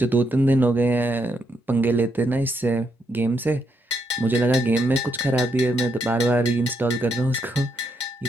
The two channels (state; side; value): normal; both; correlation 0.78